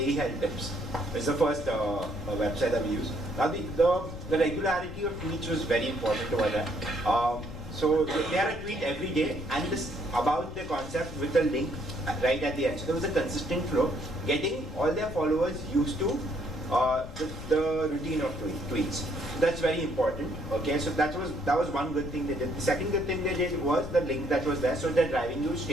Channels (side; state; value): left; noise; rumble, 11 dB below the sound